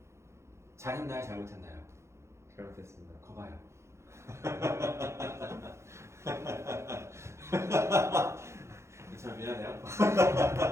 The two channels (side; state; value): left; late; 0.13 ms